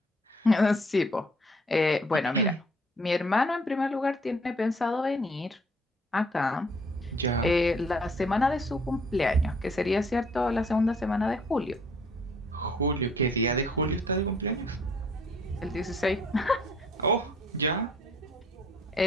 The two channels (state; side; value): normal; both; correlation 0.60